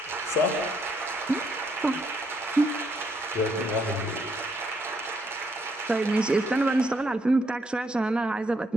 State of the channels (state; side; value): normal; both; correlation 0.73